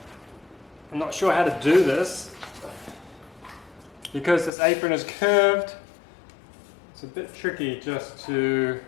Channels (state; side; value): drops out; right; at 4.5 s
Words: I'm not sure how to do this because this apron is curved. It's a bit tricky just to